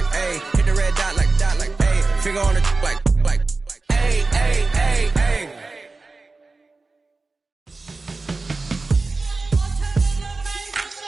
Hit the red dot like, ayy. Finger on the like, ayy, ayy, ayy, ayy.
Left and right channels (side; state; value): left; quieter; 3.7 dB